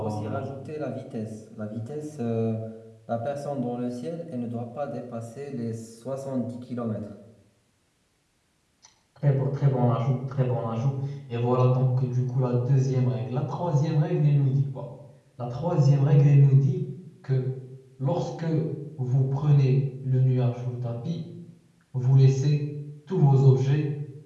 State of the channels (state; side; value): identical; both; correlation 1.00